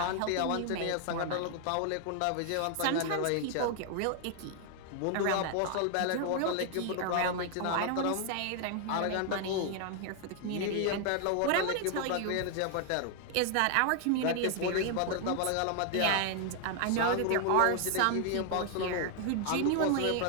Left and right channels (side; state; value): both; different; correlation 0.00